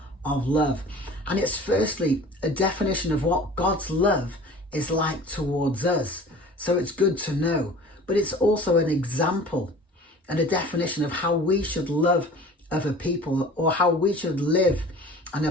of love. And it's firstly a definition of what God's love is like towards us. So it's good to know. But it's also an example and a definition of how we should love other people, or how we should live and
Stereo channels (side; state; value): both; normal; correlation 0.43